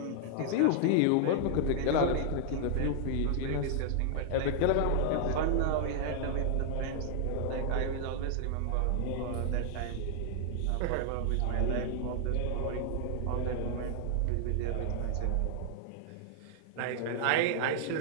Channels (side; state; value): both; different; correlation -0.01